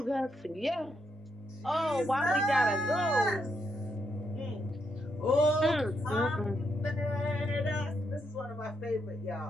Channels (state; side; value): normal; both; correlation 0.79